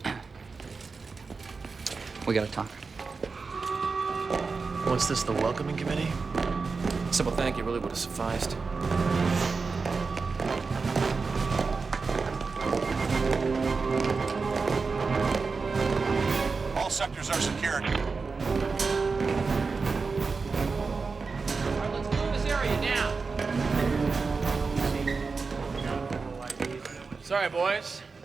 We gotta talk. What's this, the welcoming committee? Simple thank you really would have sufficed. All sectors are secured. Let's move this area now. Sorry, boys.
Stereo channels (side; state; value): left; quieter; 4.5 dB